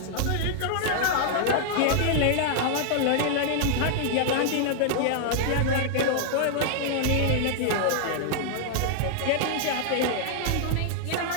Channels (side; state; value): both; different; correlation -0.01